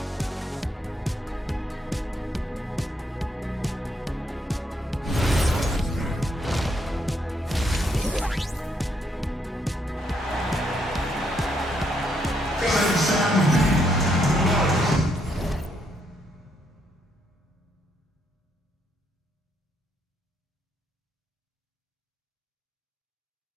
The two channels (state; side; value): normal; both; correlation 0.75